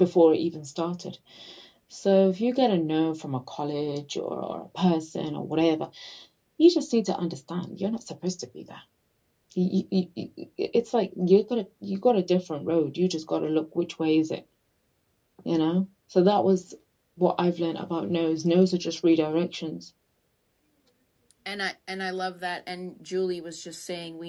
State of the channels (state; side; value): identical; both; correlation 1.00